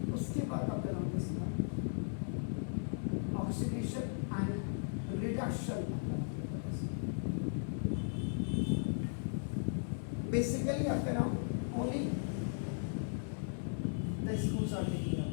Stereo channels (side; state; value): right; silent; digital silence